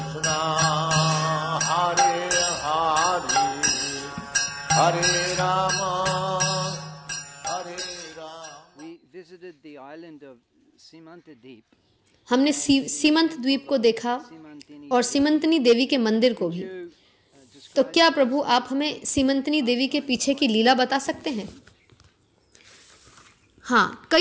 हरे हरे, हरे राम हमने सीमंत द्वीप को देखा और सीमंतनी देवी के मंदिर को भी। तो क्या प्रभु आप हमें सीमंतनी देवी के पीछे की लीला बता सकते हैं? हाँ,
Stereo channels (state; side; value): identical; both; correlation 1.00